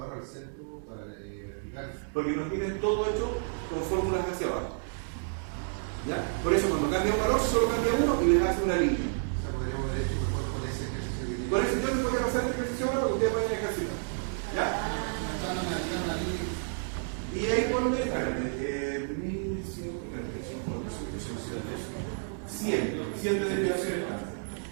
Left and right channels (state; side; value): silent; left; 57 dB below the other